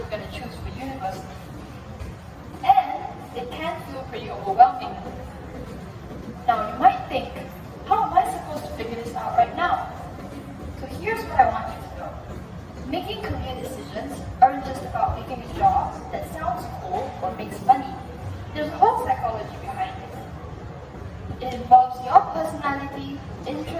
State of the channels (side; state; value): both; identical; correlation 1.00